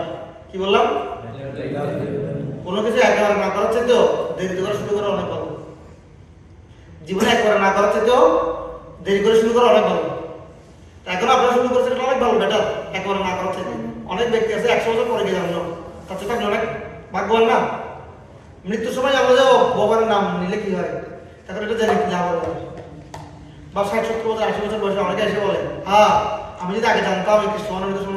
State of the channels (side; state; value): both; identical; correlation 1.00